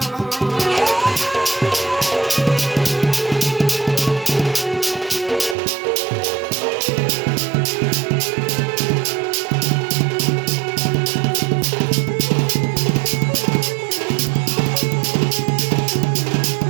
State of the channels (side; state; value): left; drops out; at 5.6 s